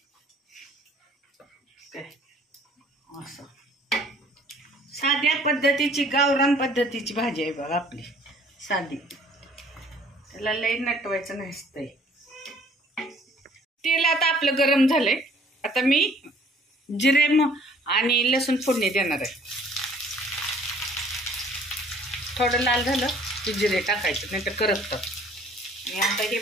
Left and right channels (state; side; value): normal; both; correlation 0.56